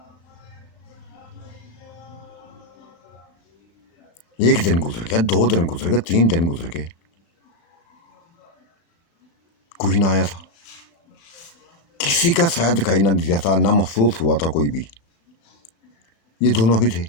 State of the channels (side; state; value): right; late; 35 ms